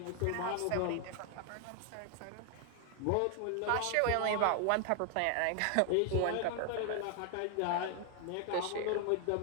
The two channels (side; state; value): both; different; correlation 0.00